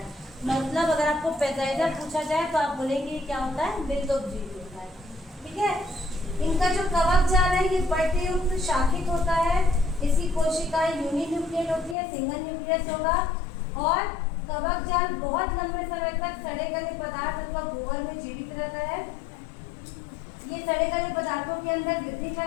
मतलब अगर आपको पेजाइजा पूछा जाए तो आप बोलेंगे क्या होता है, मृदोपजीवी होता है। ठीक है, इनका जो कवक जाल है ये पट्टयुक्त शाखित होता है। इसकी कोशिकाएं यूनिन्यूक्लियेट होती है, सिंगल न्यूक्लियस होगा। और कवक जाल बहुत लंबे समय तक सड़े गले पदार्थ अथवा गोबर में जीवित रहता है। ये सड़े गले पदार्थों के अंदर वृद्धि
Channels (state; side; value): drops out; right; at 12.0 s